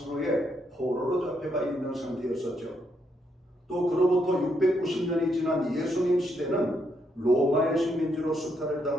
포로로 잡혀가 있는 상태였었죠. 또 그로부터 690년이 지난 예수님 시대는 로마의 식민지로 수탈을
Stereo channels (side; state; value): both; normal; correlation 0.77